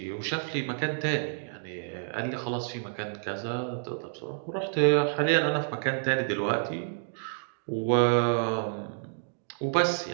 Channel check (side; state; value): left; silent; digital silence